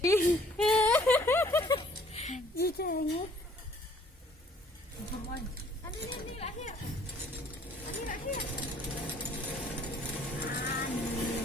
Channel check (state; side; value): normal; both; correlation 0.59